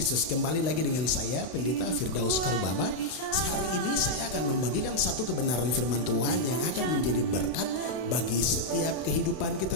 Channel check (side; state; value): right; late; 32 ms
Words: Kembali lagi dengan saya Pendeta Firdaus Karubaba. Hari ini saya akan membagikan satu kebenaran firman Tuhan yang akan menjadi berkat bagi setiap kehidupan kita